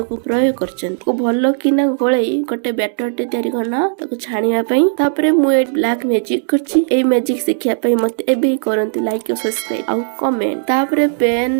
प्रयोग करछंदी। को भलो किना गोळई गोटे बैटर टे तयारी करना ताको छानिया पई। तापर मु ए ब्लैक मैजिक करछि। ए मैजिक सिखिया पई मते एबे करंती लाइक और सब्सक्राइब आ कमेंट। तापर पैन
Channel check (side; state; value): left; silent; 66 dB below the other